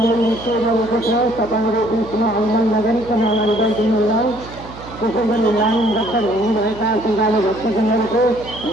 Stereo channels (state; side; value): noise; right; hum, 16 dB below the sound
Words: छ। तपाईँहरू बिचमा आन्दोलन नगरिकन अगाडि बढिदिनु होला। त्यसै गरी लाइन रद्द हुनुभएका श्रद्धालु भक्तजनहरूको